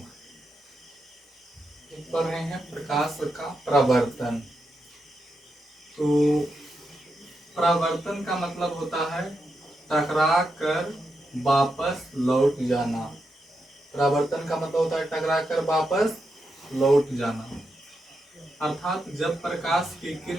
पढ़ रहे हैं प्रकाश का प्रवर्तन। तो प्रवर्तन का मतलब होता है टकरा कर वापस लौट जाना। प्रवर्तन का मतलब होता है टकरा कर वापस लौट जाना। अर्थात जब प्रकाश की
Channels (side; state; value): both; normal; correlation 0.85